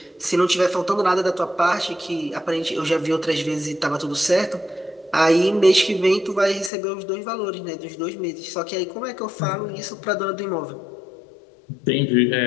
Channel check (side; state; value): right; drops out; at 6.7 s